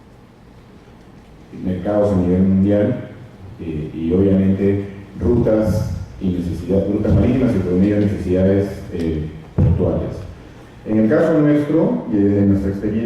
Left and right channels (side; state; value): both; identical; correlation 1.00